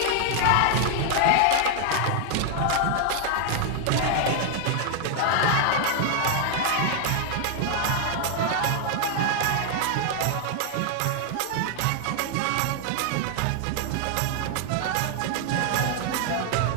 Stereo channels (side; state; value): both; different; correlation 0.00